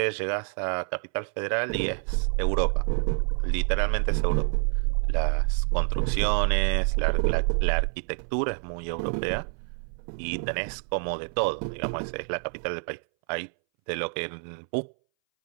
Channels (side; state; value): left; silent; 60 dB below the other